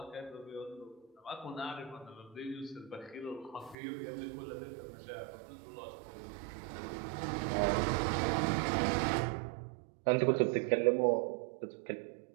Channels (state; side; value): drops out; left; at 3.8 s